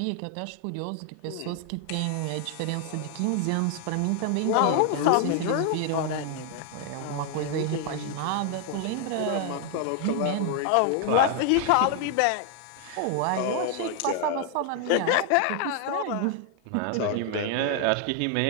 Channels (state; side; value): different; both; correlation 0.00